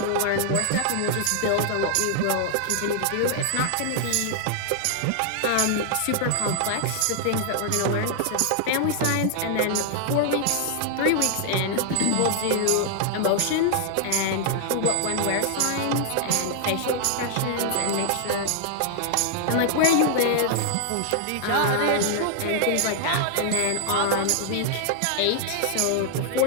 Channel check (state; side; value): different; both; correlation -0.01